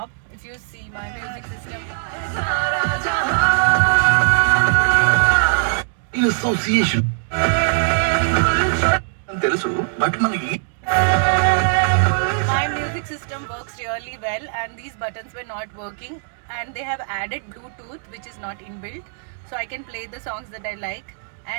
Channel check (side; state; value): left; silent; digital silence